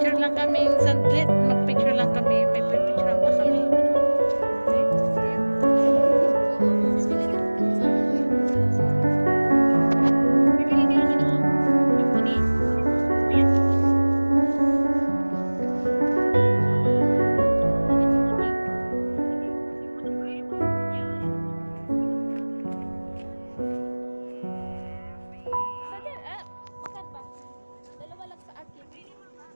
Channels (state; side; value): inverted; both; correlation -1.00